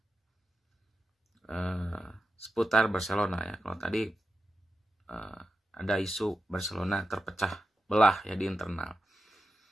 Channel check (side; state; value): both; normal; correlation 0.89